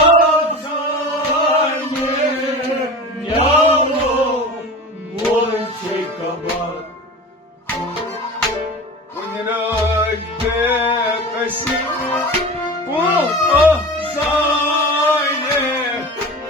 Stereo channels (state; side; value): normal; both; correlation 0.32